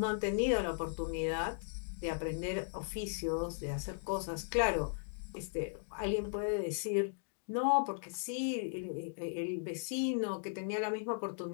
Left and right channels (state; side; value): silent; right; digital silence